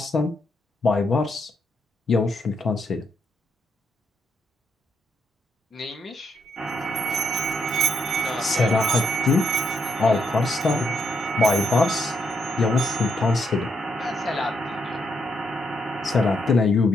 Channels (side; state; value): both; normal; correlation 0.78